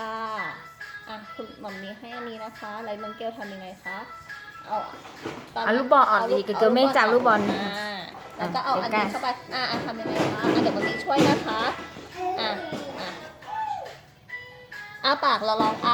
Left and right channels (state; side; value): identical; both; correlation 1.00